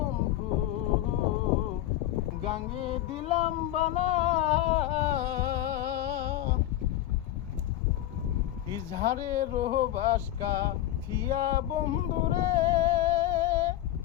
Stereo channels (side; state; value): right; quieter; 13.7 dB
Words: গাঙ্গে দিলাম বানা, ইজহারের বাস কাটিয়া বন্ধু রে